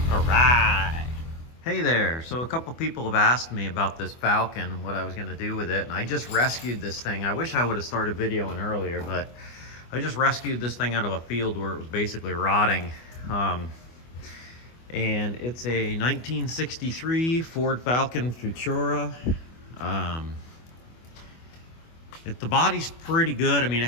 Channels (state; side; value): late; right; 24 ms